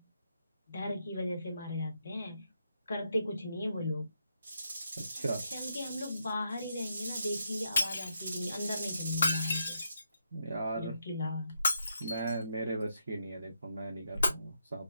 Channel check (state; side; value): inverted; both; correlation -0.80